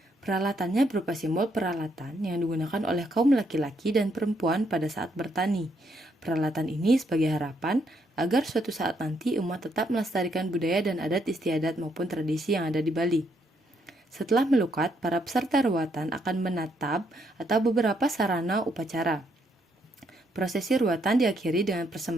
Peralatannya berupa simbol peralatan yang digunakan oleh kaum laki-laki dan perempuan pada saat bertani. Peralatan ini sebagai harapan agar suatu saat nanti umat tetap melestarikan budaya dan adat istiadat maupun tradisi yang ada di Bali. Setelah melukat, para peserta ruatan akan menatap atau beberapa sarana upacara. Prosesi ruatan diakhiri dengan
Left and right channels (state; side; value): normal; both; correlation 0.74